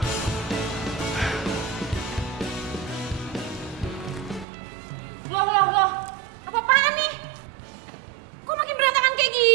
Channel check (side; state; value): left; drops out; at 4.5 s